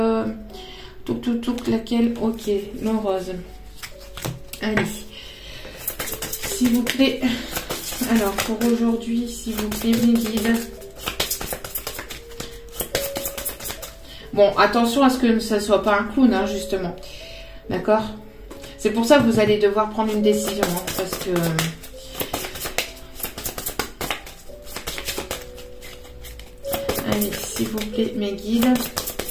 Laquelle? Ok, le rose. Allez. S'il vous plaît. Alors, pour aujourd'hui, s'il vous plaît, mes guides. Bon, attention à ce que ça ne soit pas un clown, hein, justement. D'accord? C'est pour ça que vous allez devoir prendre une décision, hein, parce que... Allez, s'il vous plaît, mes guides.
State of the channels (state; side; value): identical; both; correlation 1.00